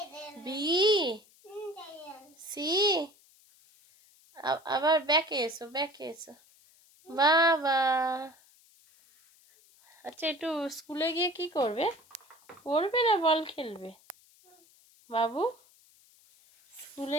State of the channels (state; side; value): noise; left; hiss, 29 dB below the sound